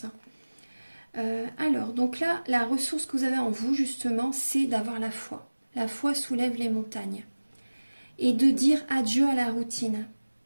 Alors, donc là, la ressource que vous avez en vous, justement, c'est d'avoir la foi. La foi soulève les montagnes. Et de dire adieu à la routine.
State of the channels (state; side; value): inverted; both; correlation -1.00